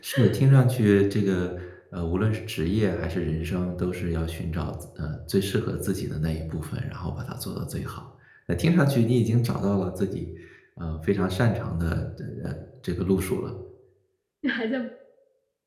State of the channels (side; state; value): both; identical; correlation 1.00